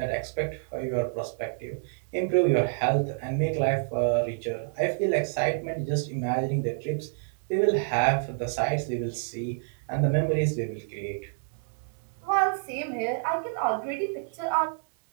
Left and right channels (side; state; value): left; silent; digital silence